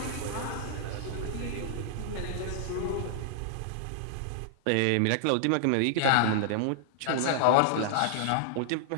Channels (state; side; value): different; both; correlation -0.01